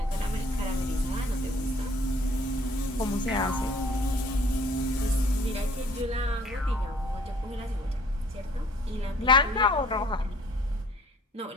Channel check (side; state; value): both; normal; correlation 0.56